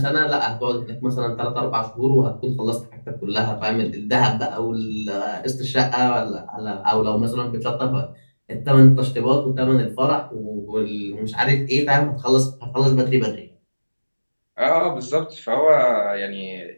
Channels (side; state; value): both; inverted; correlation -1.00